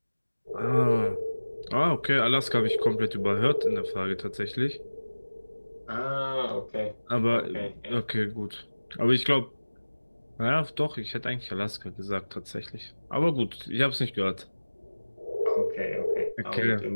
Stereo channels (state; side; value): inverted; both; correlation -1.00